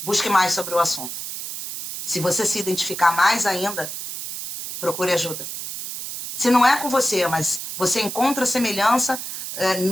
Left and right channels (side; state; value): right; noise; hiss, 7 dB below the sound